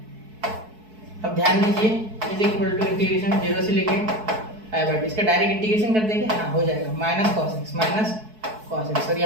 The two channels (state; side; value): late; left; 4.6 ms